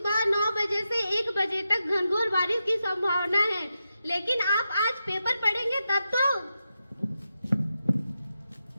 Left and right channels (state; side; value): inverted; both; correlation -0.88